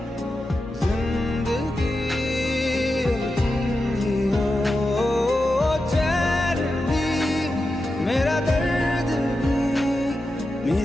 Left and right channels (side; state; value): both; normal; correlation 0.90